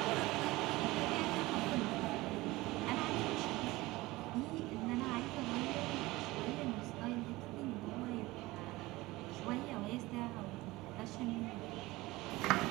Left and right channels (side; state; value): left; quieter; 20.0 dB